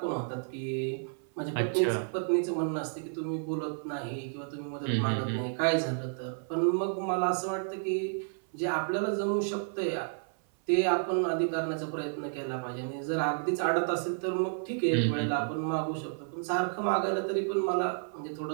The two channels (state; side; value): silent; left; 57 dB below the other